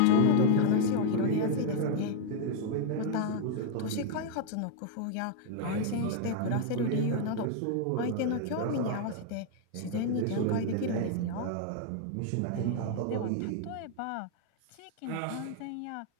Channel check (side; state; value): both; different; correlation 0.00